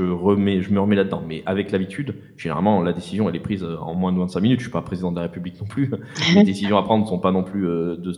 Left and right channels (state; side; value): identical; both; correlation 1.00